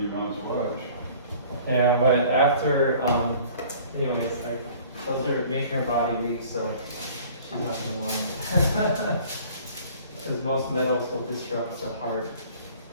Mouse watch. Yeah, but after, anyways, like, those are maker body weeks, so she's not gonna want it. Because most metals will disrupt the heart,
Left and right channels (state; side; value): inverted; both; correlation -0.50